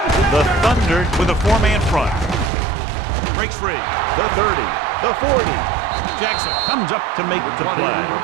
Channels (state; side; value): drops out; left; at 2.5 s